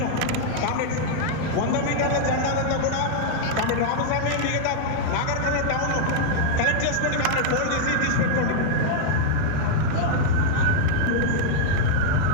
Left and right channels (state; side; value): different; both; correlation -0.01